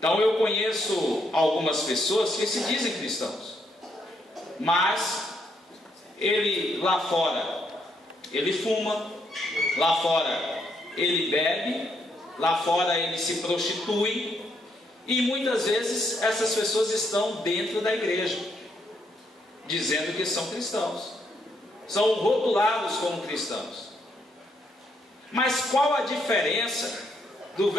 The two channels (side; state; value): both; normal; correlation 0.75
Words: eu conheço algumas pessoas que se dizem cristãos, mas ele lá fora, ele fuma, lá fora ele bebe, lá fora ele se prostitui, e muitas vezes essas pessoas estão dentro da igreja, dizendo que são cristãos, são rotulados como cristãos. Mas qual a diferença do